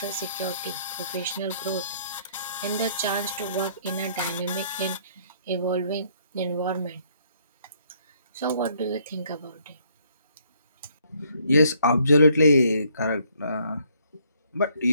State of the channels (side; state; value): both; inverted; correlation -0.66